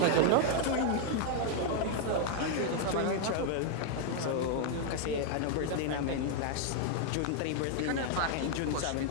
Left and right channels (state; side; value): different; both; correlation 0.00